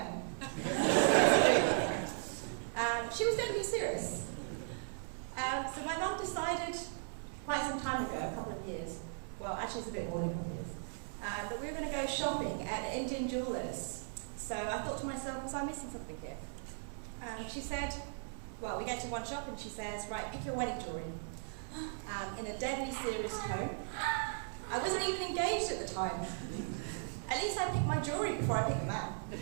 She was totally serious. So my mum decided quite some time ago, a couple of years, well actually it's a bit more than a couple of years, that we were going to go shopping at an Indian jeweller's. So I thought to myself, was I missing something here? She said, well, we get to one shop and she says, right, pick your wedding jewellery. In a deadly serious tone. I wasn't even engaged at the time. At least I picked my jewellery before I picked the man.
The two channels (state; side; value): silent; left; digital silence